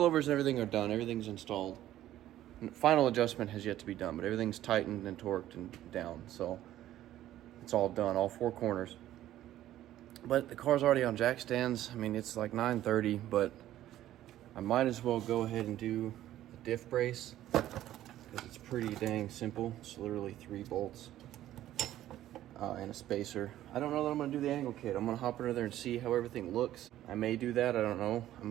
and everything are done. Everything's installed. Final adjustment has yet to be done, but everything's tightened and torqued and down, so it's all done, all four corners. But the car's already on jack stands. I mean, it's like 9:30, but I might as well go ahead and do the diff brace because it's pretty dang simple. It's literally 3 bolts and a spacer. I don't know that I'm gonna do the angle kit. I'm gonna hop under there and see how everything looks. I may do that, I don't know. I'm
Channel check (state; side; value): quieter; left; 13.3 dB